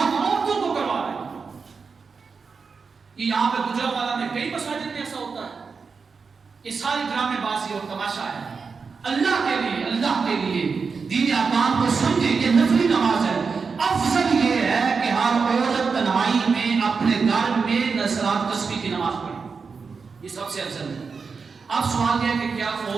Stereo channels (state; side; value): quieter; left; 5.1 dB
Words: عورتوں کو کروا رہے ہیں. یہاں پہ گجرانوالہ میں کئی مساجد میں ایسا ہوتا ہے. یہ ساری ڈرامے بازی اور تماشا ہے. اللہ کے لیے دین احکام کو سمجھے. یہ نفلی نماز ہے. افضل یہ ہے کہ ہر عورت تنہائی میں اپنے گھر میں نصرات تسبیح کی نماز پڑھے. یہ سب سے افضل ہے. اب سوال یہ ہے کہ کیا